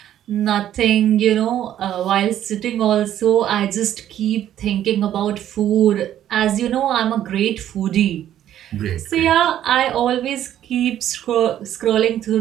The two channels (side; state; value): left; quieter; 11.4 dB